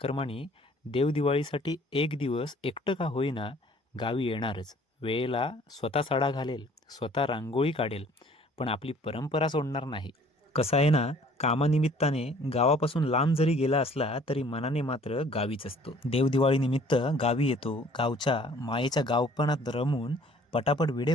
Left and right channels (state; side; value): normal; both; correlation 0.55